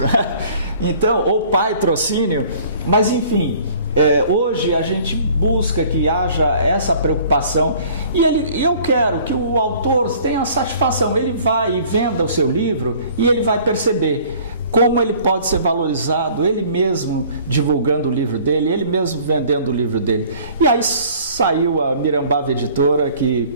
Então, ou patrocínio, mas enfim, hoje a gente busca que haja essa preocupação e eu quero que o autor tenha satisfação, ele vai e venda o seu livro e ele vai perceber como ele pode ser valorizado, ele mesmo divulgando o livro dele, ele mesmo vendendo o livro dele. E aí saiu a Mirambava Editora,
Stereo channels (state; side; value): inverted; both; correlation -0.52